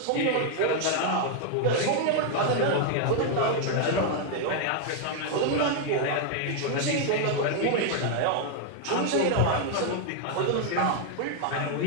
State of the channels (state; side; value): different; both; correlation 0.00